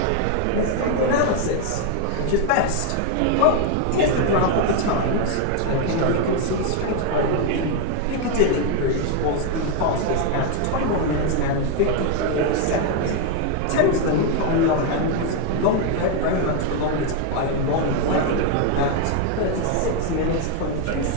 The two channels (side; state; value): both; different; correlation 0.01